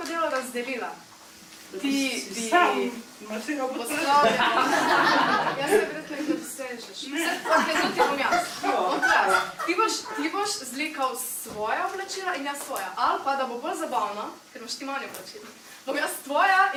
delo razdelila. Ti bi... Sam masiral podplate. Pospravljala. Jaz se verjetno jih ne dosežeš. Ok, to ti bom jaz. Bom to jaz. Ti boš zlikal svoja oblačila in jaz svoja. Ali pa, da bo bolj zabavno, ker imaš ti manj oblačila. Bom jaz tvoja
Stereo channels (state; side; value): identical; both; correlation 1.00